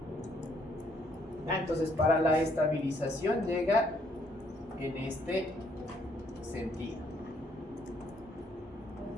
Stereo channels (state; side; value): normal; both; correlation 0.68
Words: Entonces para la estabilización llega en este sentido.